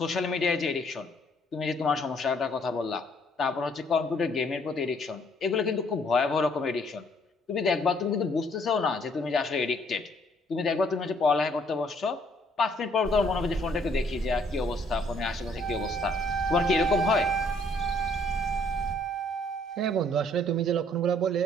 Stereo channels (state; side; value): normal; both; correlation 0.64